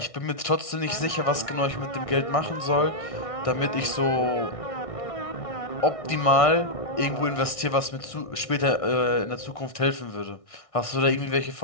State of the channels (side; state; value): right; late; 1.6 ms